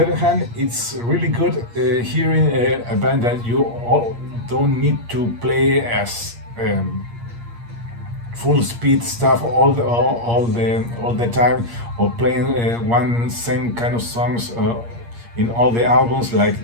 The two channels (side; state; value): left; late; 8.5 ms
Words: other hand, it's really good hearing a band that you all don't need to play as full speed stuff all the time, or playing one same kind of songs in all the albums like